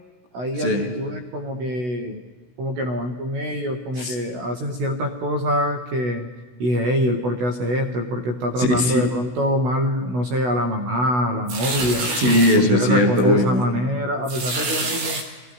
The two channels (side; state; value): left; late; 16 ms